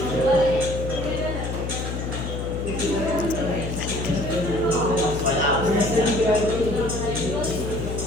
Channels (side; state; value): left; noise; hum, 4 dB below the sound